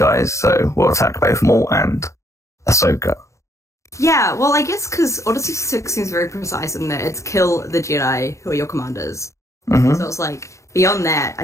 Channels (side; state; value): right; late; 0.15 ms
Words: so we'll attack both Maul and Ahsoka. Yeah, well, I guess because Order 66 seems very precise in that it's kill the Jedi who are your commanders. Mm-hmm. So it's like, beyond that,